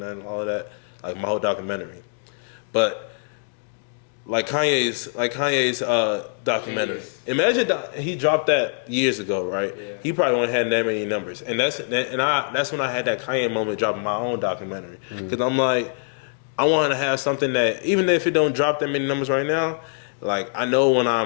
all of that, like my whole documentary, but. Like Kanye's documentary. Imagine he dropped that years ago, right? Yeah. He probably wouldn't have that many numbers, and that's when I had that Kanye moment dropping my own documentary because I'm like, I want to have something that even if it don't drop that many numbers right now, like I know when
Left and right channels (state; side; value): silent; right; digital silence